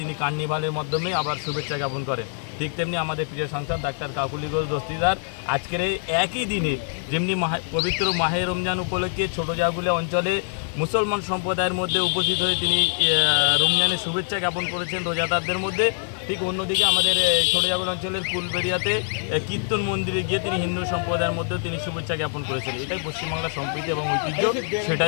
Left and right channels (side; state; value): right; silent; 61 dB below the other